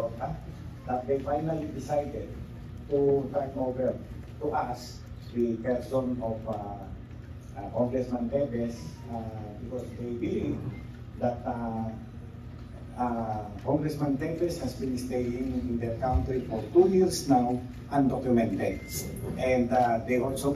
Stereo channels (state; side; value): identical; both; correlation 1.00